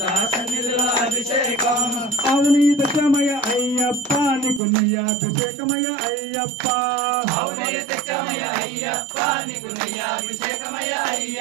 సన్నిధిలో అభిషేకం అవునీత సమయ అయ్యప్ప నీకు నెయ్యాభిషేకమయ అయ్యప్ప అవునయతమయ అయ్యప్ప నీకు నెయ్యాభిషేకమయ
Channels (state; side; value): drops out; left; at 4.6 s